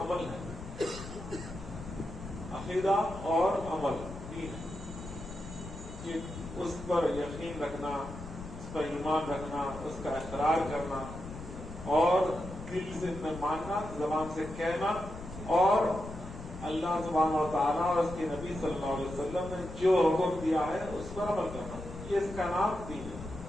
ہے۔ عقیدہ اور عمل دین ہے کہ اس پر یقین رکھنا، اس پر ایمان رکھنا، اس کا اقرار کرنا اور دل سے ماننا، زبان سے کہنا، اور اللہ سبحانہ و تعالیٰ اور اس کے نبی صلی اللہ علیہ وسلم نے جو حکم دیا ہے اس پر عمل کرنا، یہ اس کا نام دین ہے۔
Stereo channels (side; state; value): left; noise; rumble, 11 dB below the sound